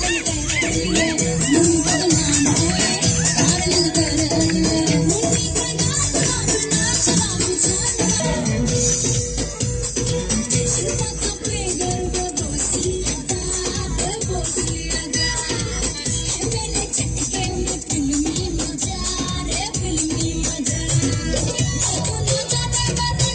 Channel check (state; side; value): identical; both; correlation 1.00